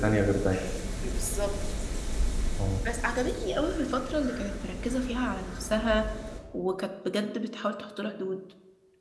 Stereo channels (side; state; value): both; identical; correlation 1.00